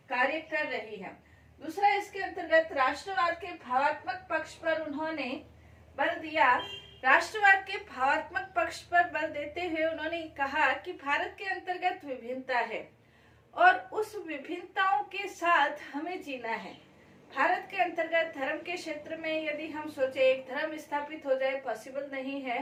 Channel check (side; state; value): both; identical; correlation 1.00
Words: कार्य कर रही है। दूसरा, इसके अंतर्गत राष्ट्रवाद के भावात्मक पक्ष पर उन्होंने बल दिया। राष्ट्रवाद के भावात्मक पक्ष पर बल देते हुए उन्होंने कहा कि भारत के अंतर्गत विभिन्नता है और उस विभिन्नताओं के साथ हमें जीना है। भारत के अंतर्गत धर्म के क्षेत्र में यदि हम सोचे एक धर्म स्थापित हो जाए, पॉसिबल नहीं है।